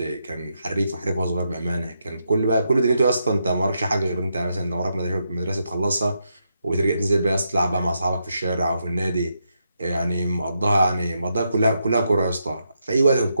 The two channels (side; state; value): both; inverted; correlation -0.82